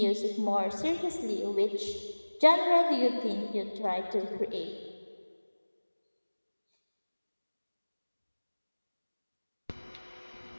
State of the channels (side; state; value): both; inverted; correlation -1.00